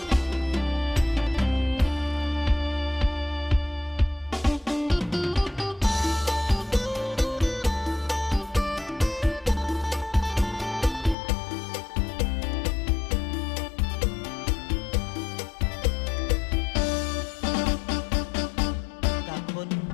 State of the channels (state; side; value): drops out; right; at 11.2 s